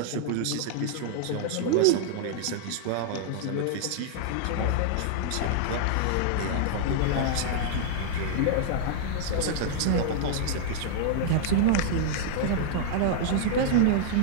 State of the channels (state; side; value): different; both; correlation -0.01